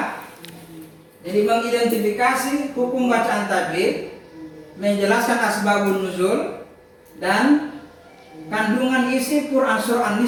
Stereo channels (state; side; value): identical; both; correlation 1.00